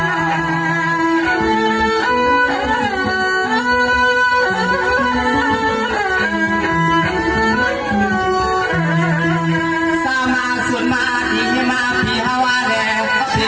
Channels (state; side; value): identical; both; correlation 1.00